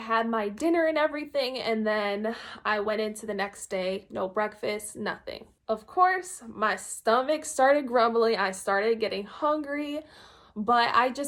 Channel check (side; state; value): both; identical; correlation 1.00